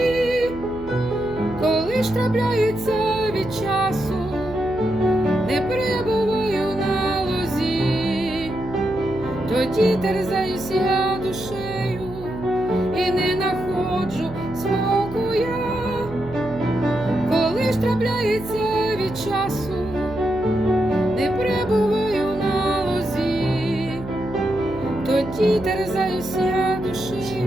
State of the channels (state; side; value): noise; right; hum, 14 dB below the sound